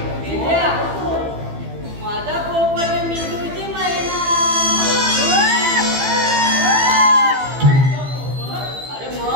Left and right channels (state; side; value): late; left; 15 ms